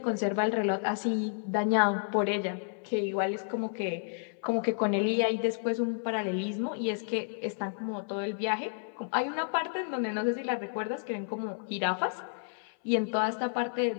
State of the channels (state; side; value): silent; right; 57 dB below the other